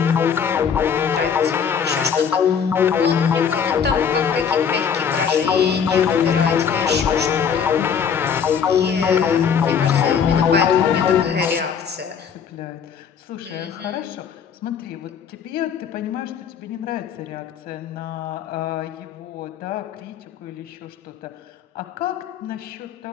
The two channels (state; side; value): quieter; right; 7.2 dB